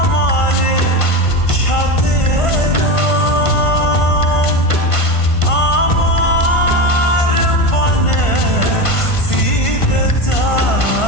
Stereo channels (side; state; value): right; late; 1.5 ms